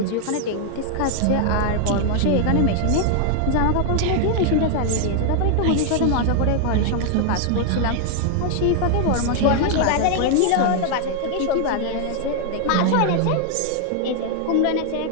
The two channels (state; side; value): different; both; correlation 0.00